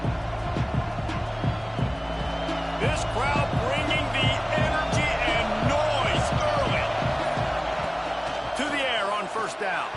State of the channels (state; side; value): identical; both; correlation 1.00